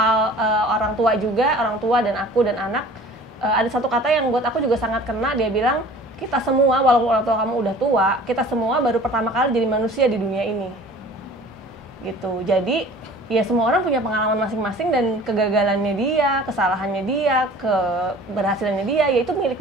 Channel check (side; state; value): both; normal; correlation 0.46